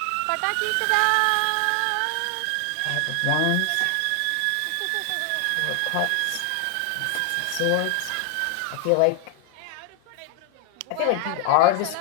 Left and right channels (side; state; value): both; different; correlation 0.00